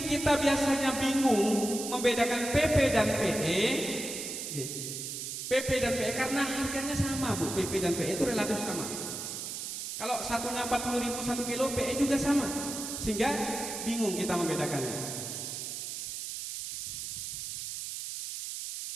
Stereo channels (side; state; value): right; noise; hiss, 6 dB below the sound